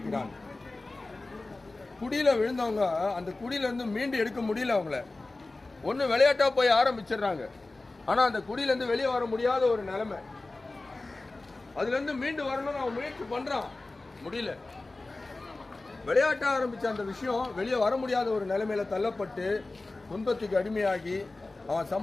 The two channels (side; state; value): right; quieter; 3.2 dB